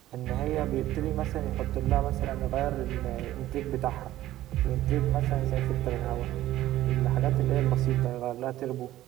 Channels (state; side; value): quieter; left; 14.5 dB